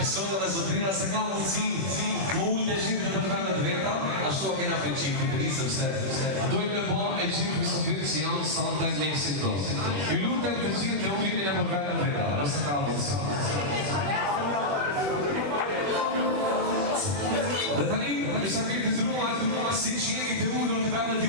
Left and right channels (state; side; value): late; left; 21 ms